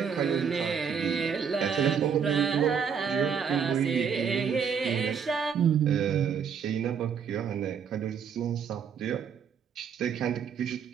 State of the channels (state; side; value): quieter; left; 6.9 dB